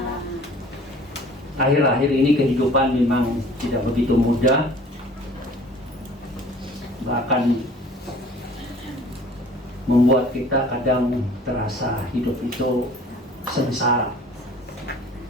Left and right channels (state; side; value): normal; both; correlation 0.49